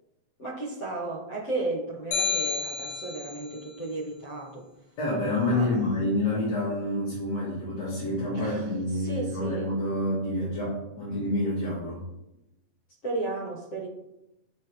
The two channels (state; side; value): late; right; 7.5 ms